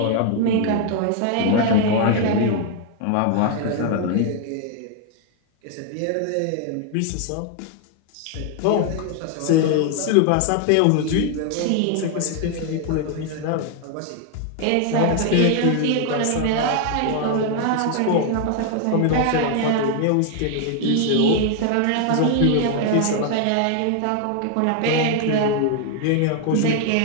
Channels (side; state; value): both; different; correlation 0.00